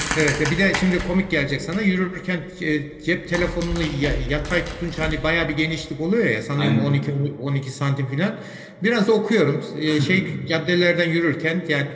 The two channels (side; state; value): both; identical; correlation 1.00